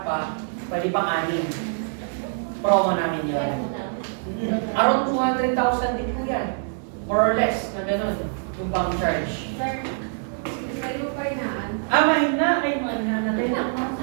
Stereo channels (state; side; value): silent; left; digital silence